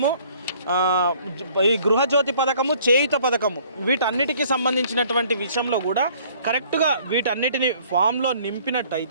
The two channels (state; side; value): inverted; both; correlation -0.57